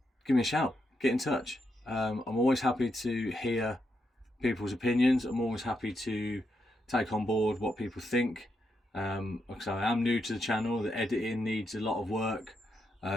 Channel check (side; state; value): both; normal; correlation 0.82